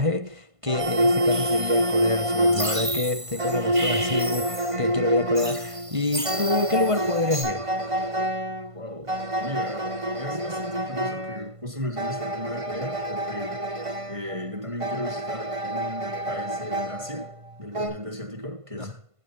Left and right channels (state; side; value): late; left; 1.5 ms